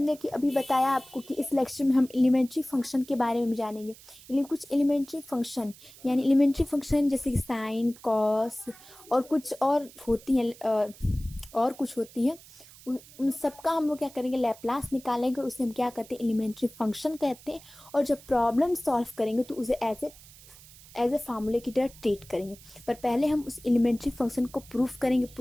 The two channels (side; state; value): right; noise; hiss, 21 dB below the sound